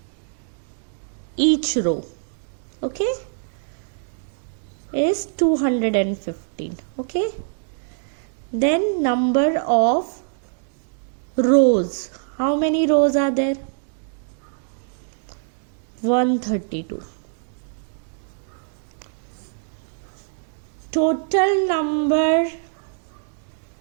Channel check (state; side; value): silent; left; digital silence